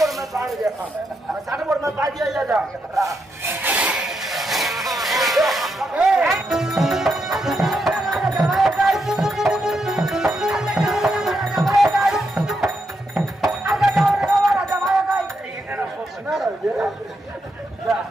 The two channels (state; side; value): normal; both; correlation 0.82